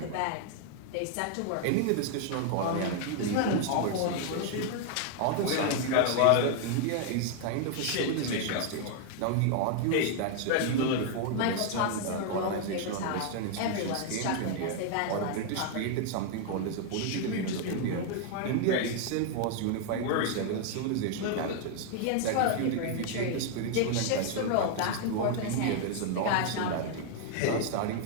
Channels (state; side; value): different; both; correlation 0.00